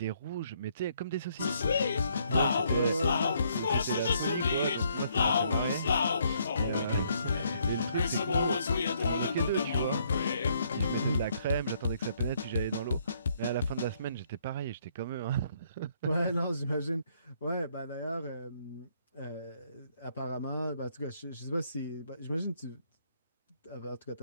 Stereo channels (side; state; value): both; inverted; correlation -0.69